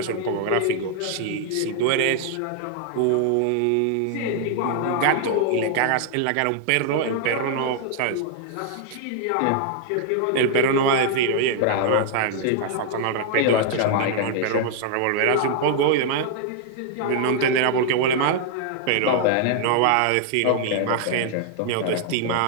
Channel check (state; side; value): different; both; correlation 0.00